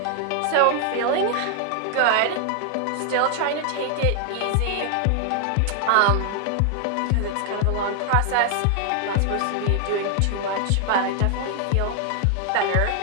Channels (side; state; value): both; different; correlation 0.00